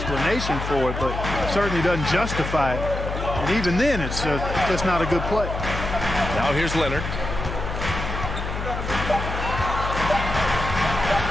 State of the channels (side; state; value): left; noise; hum, 5 dB below the sound